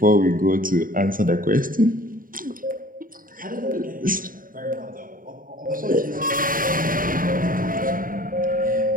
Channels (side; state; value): left; late; 0.41 ms